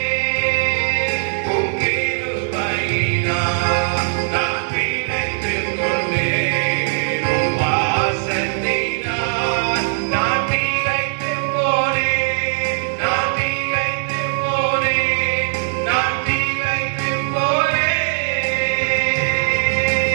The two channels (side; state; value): left; silent; digital silence